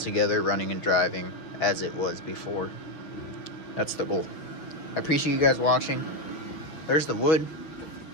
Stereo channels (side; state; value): right; late; 6.2 ms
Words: running and driving as it was before. That's the goal. I appreciate you guys watching. There's the wood.